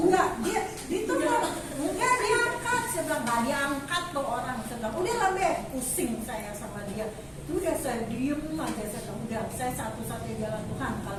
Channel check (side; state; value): both; identical; correlation 1.00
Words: dia ditelepon. Enggak diangkat. Saya bilang nggak diangkat tuh orang. Saya bilang udah lah Be, pusing saya sama dia. Itu udah saya diem aja. Saya bilang udah, saya satu-satunya jalan Tuhan.